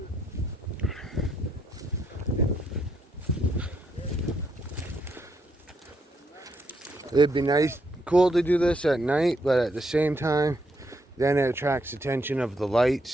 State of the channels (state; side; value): normal; both; correlation 0.76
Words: It'd be nice, cool to do this at night, but at the same time, then it attracts attention of the